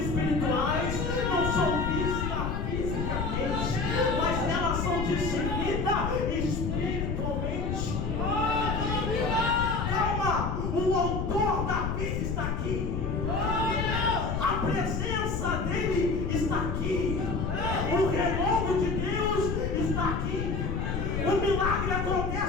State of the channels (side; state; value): left; noise; rumble, 1 dB below the sound